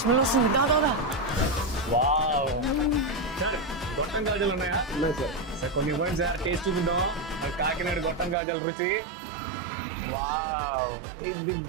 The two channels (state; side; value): drops out; left; at 8.3 s